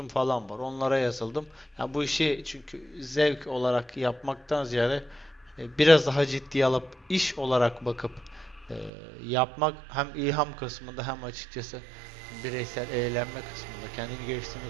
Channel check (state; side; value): drops out; left; at 8.9 s